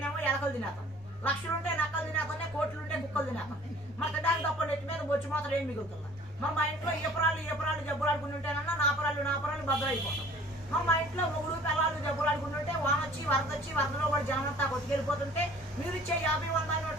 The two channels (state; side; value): normal; both; correlation 0.50